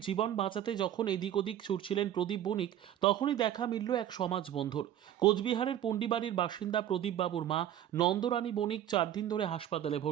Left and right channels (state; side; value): quieter; left; 11.3 dB